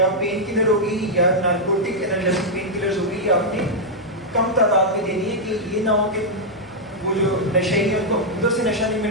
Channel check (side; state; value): both; normal; correlation -0.04